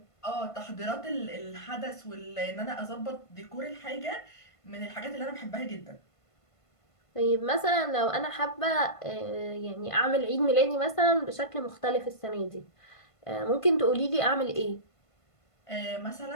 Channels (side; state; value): right; late; 1.5 ms